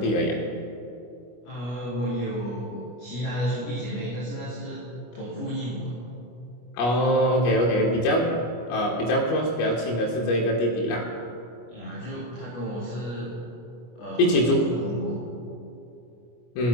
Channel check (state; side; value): late; right; 25 ms